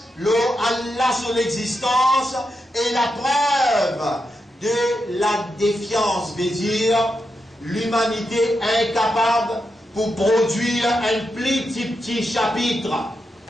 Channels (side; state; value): both; normal; correlation 0.86